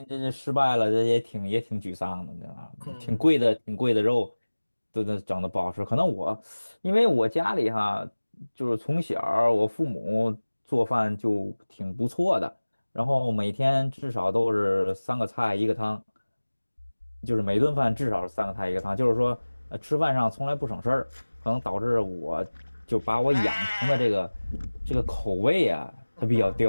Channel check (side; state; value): both; inverted; correlation -1.00